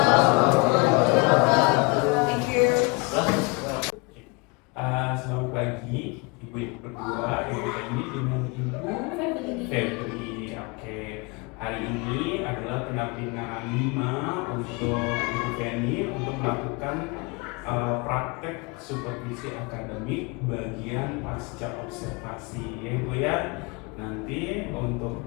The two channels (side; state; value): right; quieter; 29.2 dB